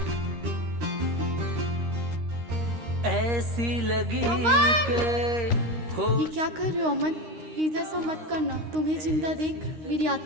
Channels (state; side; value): late; left; 13 ms